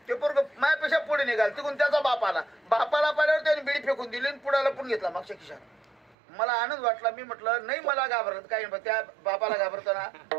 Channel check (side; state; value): left; drops out; at 6.2 s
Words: ते पोरग माझ्यापेक्षा पुढे निघाल, तिकडून त्याचा बाप आला, बापाला पाहिल्यावर त्याने बिडी फेकून दिली आणि पुढाला पण घेतला मागच्या खिशात. मला आनंद वाटला. मी म्हटलं नाही मला घाबरत काही, त्या बापाला घाबरताना